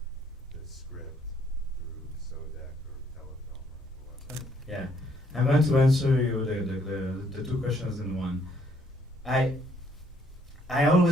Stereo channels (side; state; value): both; normal; correlation 0.67